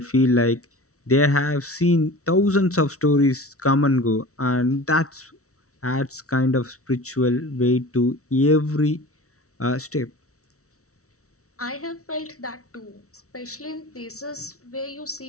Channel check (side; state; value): right; late; 0.64 ms